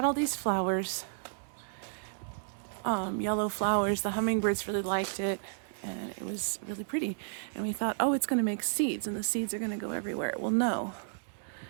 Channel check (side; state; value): left; silent; 56 dB below the other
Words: all these flowers, yellow flowers. The hummingbirds really liked it, and it was really pretty. And we thought, oh, it's going to make seeds, and the seeds are going to go everywhere. Well, no.